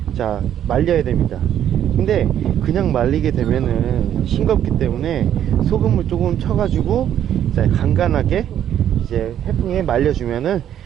자, 말려야 됩니다. 근데 그냥 말리게 되면은 싱겁기 때문에 소금을 조금 쳐가지고 자, 간간하게 이제 해풍에 말려주면은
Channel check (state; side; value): quieter; left; 10.4 dB